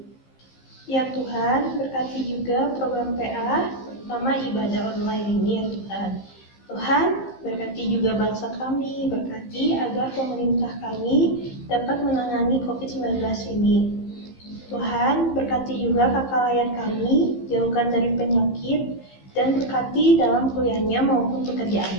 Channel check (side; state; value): right; late; 15 ms